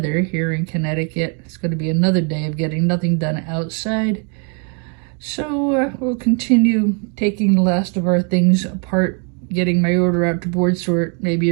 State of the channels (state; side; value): quieter; left; 38.1 dB